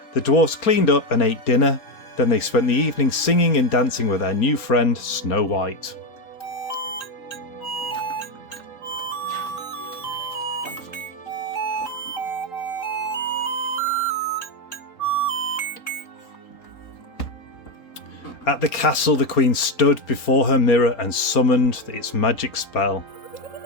The dwarfs cleaned up and ate dinner. Then they spent the evening singing and dancing with their new friend Snow White. At the castle, the queen stood before her mirror and summoned its magic spell.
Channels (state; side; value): late; right; 4.3 ms